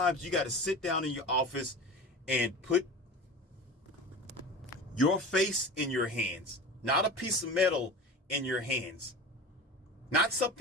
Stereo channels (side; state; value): both; normal; correlation 0.32